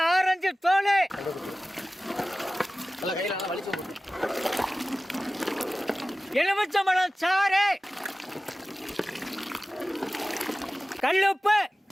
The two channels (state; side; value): normal; both; correlation 0.96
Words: ஆரஞ்சு தோல் கையில நல்லா வலிச்சு போட்டு எலுமிச்சம்பழம் சாறு கல்லுப்பு